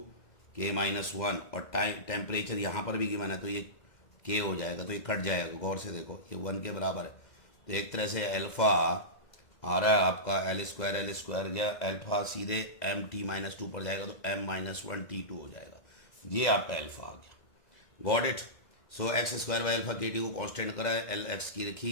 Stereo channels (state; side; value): late; right; 2.1 ms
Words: K-1, और टाइम टेम्परेचर यहाँ पर भी गिवन है तो ये K हो जाएगा, तो ये कट जाएगा, गौर से देखो ये 1 के बराबर है। तो एक तरह से अल्फा आ रहा है आपका L² गया, अल्फा सीधे MT-2 पर जाएगा तो M-1 T2 हो जाएगा, ये आपका अल्फा आ गया। Got it. So x² by alpha KT को कांस्टेंट करा है, L x की रखी,